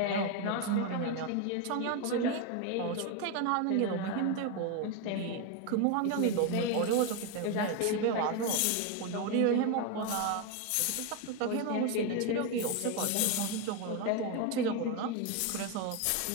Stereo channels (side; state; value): both; different; correlation 0.02